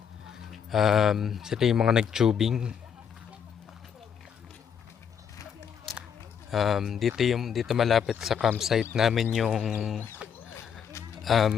Sila yung mga nag-tubing. Dito malapit sa campsite namin yung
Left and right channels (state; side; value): quieter; right; 7.6 dB